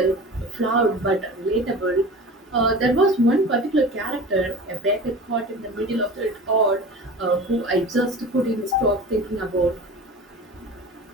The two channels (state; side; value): normal; both; correlation 0.35